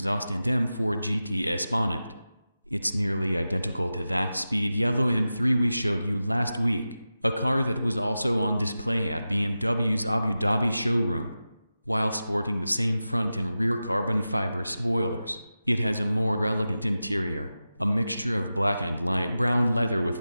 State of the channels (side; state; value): both; inverted; correlation -0.93